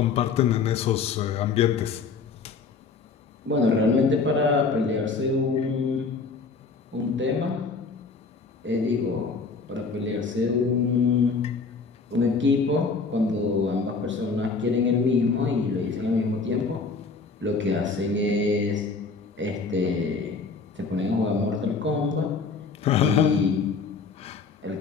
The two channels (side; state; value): right; quieter; 4.6 dB